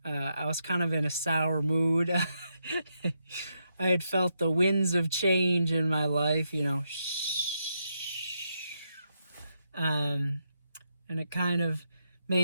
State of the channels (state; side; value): inverted; both; correlation -0.81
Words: I was kind of in a sour mood. I had felt the winds of change in my life, you know. And it kind of